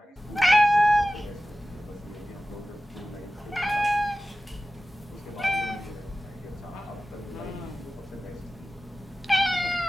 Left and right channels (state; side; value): normal; both; correlation 0.95